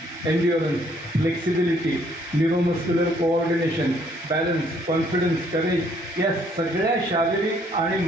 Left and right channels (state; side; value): normal; both; correlation 0.65